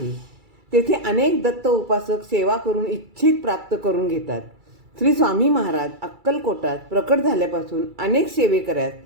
तेथे अनेक दत्त उपासक सेवा करून इच्छित प्राप्त करून घेतात. श्री स्वामी महाराज अक्कलकोटात प्रकट झाल्यापासून अनेक सेवेकऱ्यास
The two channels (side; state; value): left; late; 2.3 ms